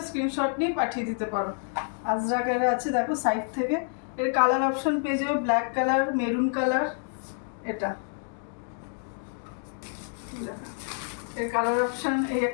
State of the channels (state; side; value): silent; right; 59 dB below the other